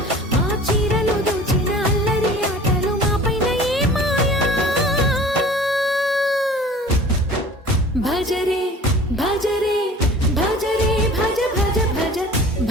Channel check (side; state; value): both; normal; correlation 0.44